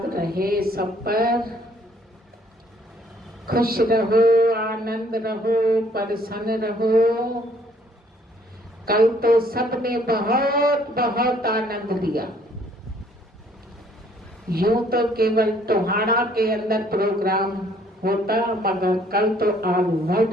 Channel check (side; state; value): both; normal; correlation 0.62